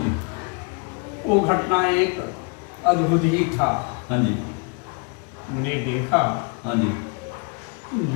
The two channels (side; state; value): right; quieter; 34.8 dB